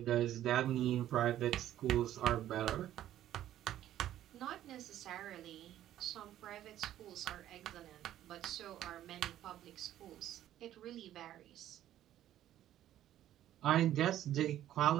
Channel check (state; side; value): quieter; left; 12.4 dB